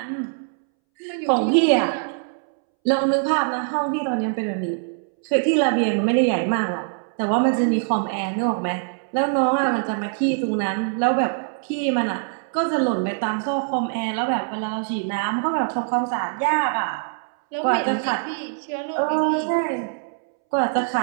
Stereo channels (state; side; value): silent; left; 63 dB below the other